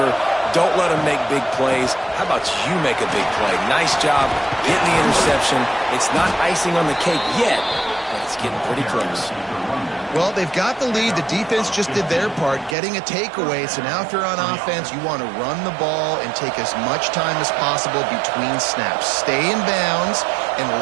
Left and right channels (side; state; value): left; drops out; at 12.8 s